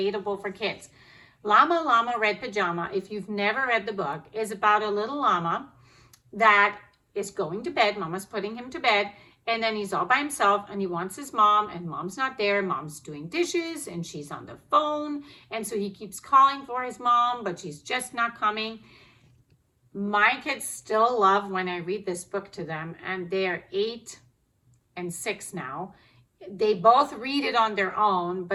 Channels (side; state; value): both; identical; correlation 1.00